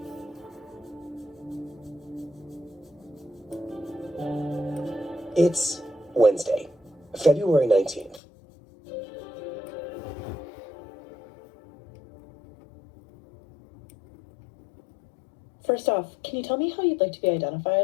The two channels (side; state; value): right; drops out; at 8.2 s